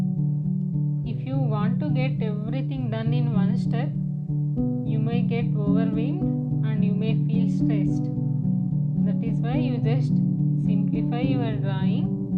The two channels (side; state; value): both; identical; correlation 1.00